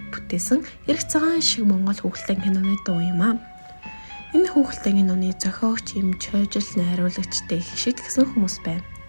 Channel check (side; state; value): both; inverted; correlation -1.00